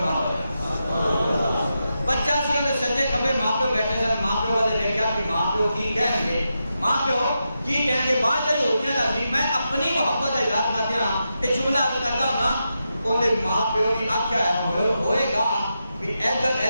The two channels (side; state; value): both; inverted; correlation -0.87